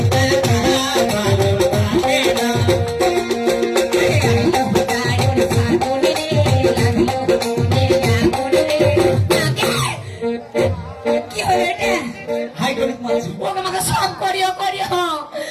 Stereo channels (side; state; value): both; identical; correlation 1.00